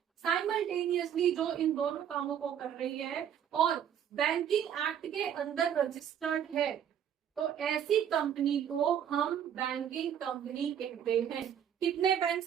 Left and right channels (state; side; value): quieter; left; 9.1 dB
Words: साइमल्टेनियसली जो इन दोनों कामों को कर रही है और बैंकिंग एक्ट के अंदर रजिस्टर्ड है, तो ऐसी कंपनी को हम बैंकिंग कंपनी कहते हैं। कितने